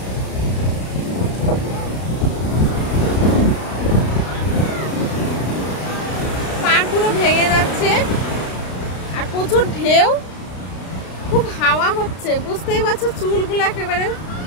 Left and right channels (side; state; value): right; late; 33 ms